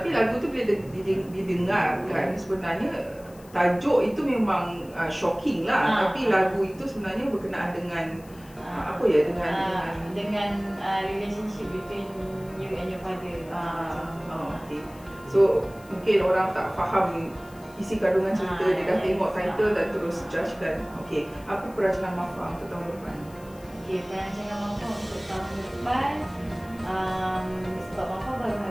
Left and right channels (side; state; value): left; noise; hiss, 25 dB below the sound